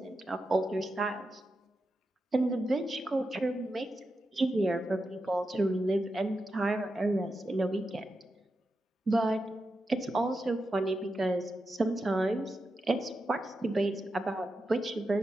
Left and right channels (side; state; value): both; normal; correlation 0.88